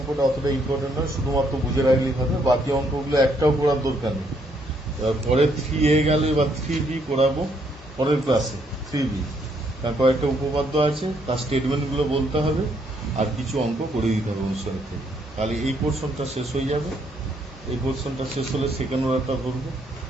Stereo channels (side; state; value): both; normal; correlation 0.71